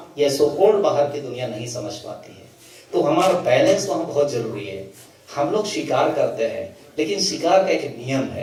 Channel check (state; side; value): identical; both; correlation 1.00